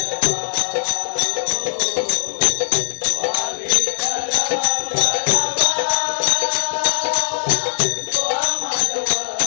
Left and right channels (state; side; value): silent; right; digital silence